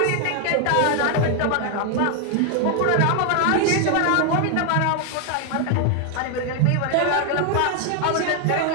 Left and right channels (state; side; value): different; both; correlation 0.01